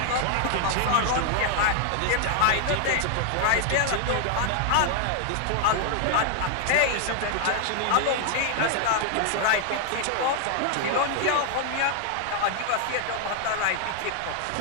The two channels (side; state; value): both; different; correlation 0.00